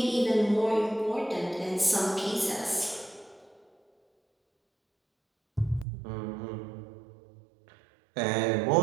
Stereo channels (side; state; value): left; drops out; at 5.9 s